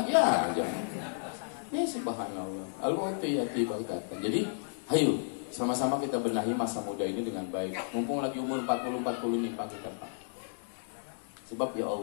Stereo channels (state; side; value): silent; right; digital silence